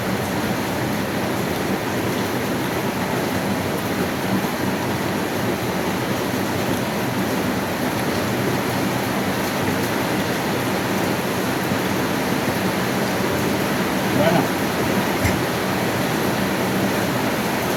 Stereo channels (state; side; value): identical; both; correlation 1.00